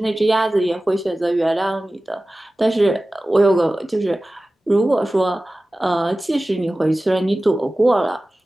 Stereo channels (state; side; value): normal; both; correlation 0.96